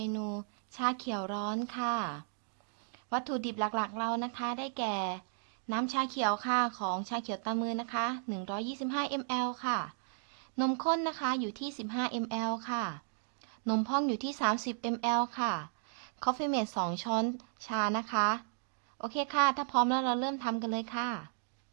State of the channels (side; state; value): left; silent; digital silence